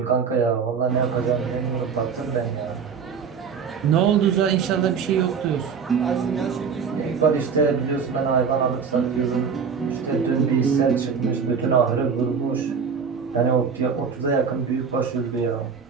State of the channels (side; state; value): left; quieter; 6.2 dB